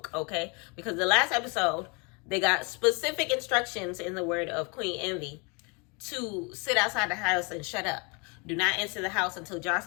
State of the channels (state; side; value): quieter; right; 31.3 dB